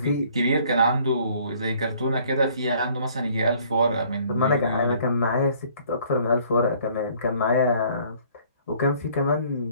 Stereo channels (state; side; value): inverted; both; correlation -0.58